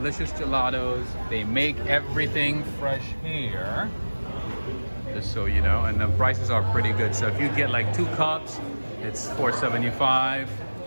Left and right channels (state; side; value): inverted; both; correlation -1.00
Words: gelatos. They make everything fresh here, just so you know, and the prices are pretty good. So if you get like 2 cups, it's $4.75.